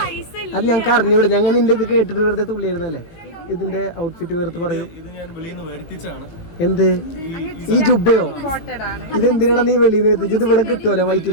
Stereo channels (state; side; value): late; right; 18 ms